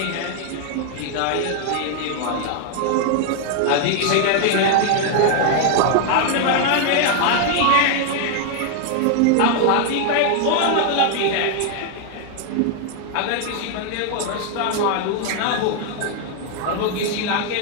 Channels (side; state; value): both; different; correlation 0.00